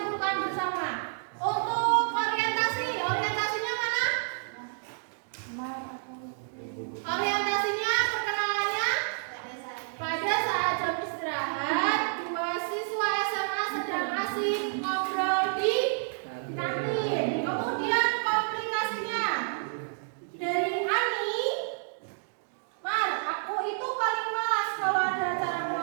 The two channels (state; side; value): silent; left; digital silence